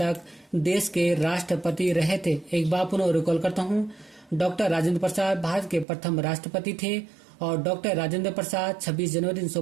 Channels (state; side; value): drops out; left; at 5.9 s